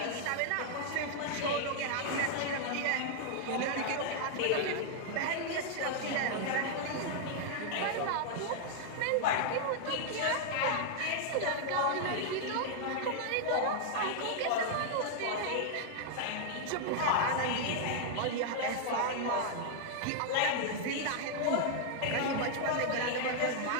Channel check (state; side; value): different; both; correlation 0.00